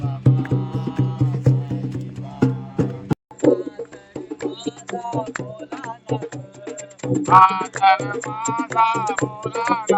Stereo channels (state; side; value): identical; both; correlation 1.00